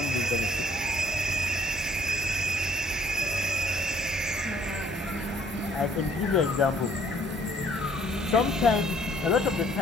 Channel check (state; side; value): normal; both; correlation 0.60